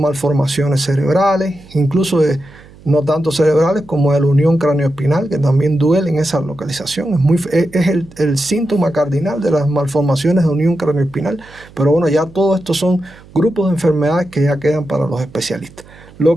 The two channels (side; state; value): right; noise; hum, 23 dB below the sound